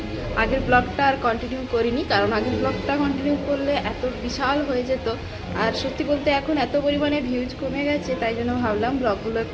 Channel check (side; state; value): both; identical; correlation 1.00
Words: আগের ব্লগটা আর কন্টিনিউ করিনি, কারণ আগের ব্লগটা কন্টিনিউ করলে এত বিশাল হয়ে যেত। আর সত্যি বলতে এখন এত পরিমাণে ভিউজ কমে গেছে, তাই জন্য ভাবলাম ব্লগগুলো